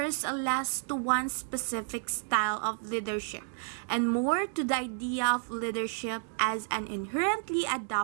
less to one specific style of leadership and more to the idea of leadership as an inherently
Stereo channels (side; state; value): left; silent; 57 dB below the other